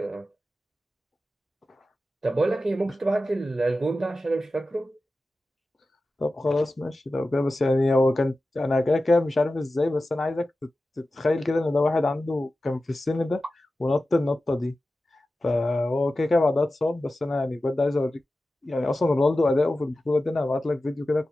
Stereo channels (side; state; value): both; normal; correlation 0.94